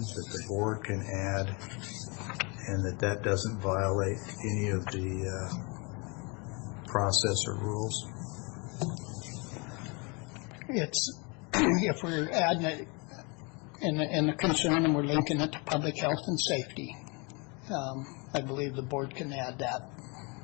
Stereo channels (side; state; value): right; quieter; 30.6 dB